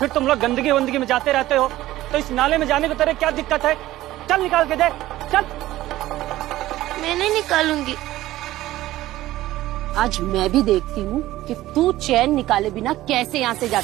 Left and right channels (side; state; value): left; quieter; 15.7 dB